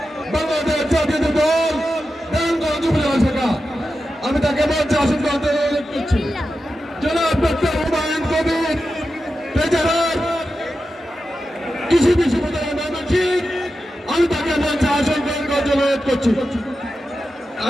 বাংলাদেশ জাতীয় দল নারায়ণগঞ্জ উপজেলা শাখা। আমি তাকে মঞ্চে আসন গ্রহণ করতে অনুরোধ করছি। জনাব ডক্টর হুমায়ুন কবির, ট্রেজারার কৃষি বিশ্ববিদ্যালয় ময়মনসিংহ, আমি তাকে মঞ্চে আসন গ্রহণ করতে অনুরোধ করছি।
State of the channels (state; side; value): normal; both; correlation 0.91